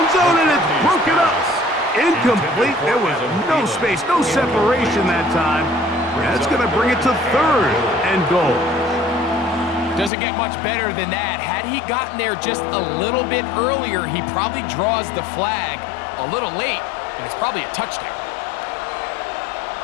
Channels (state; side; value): drops out; right; at 10.1 s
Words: zone, and it's broken up. Incomplete. There was no space, no separation that time. That's going to bring it to 3rd and goal. Doesn't get much better than that. Had he gotten there just a little bit earlier, he probably draws the flag a little late, and it's probably a touchdown.